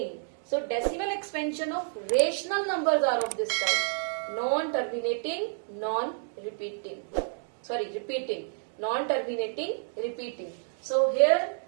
So decimal expansion of rational numbers are of this type. Non-terminating, non-repeating. Sorry, repeating. Non-terminating, repeating. So here,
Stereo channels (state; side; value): silent; left; digital silence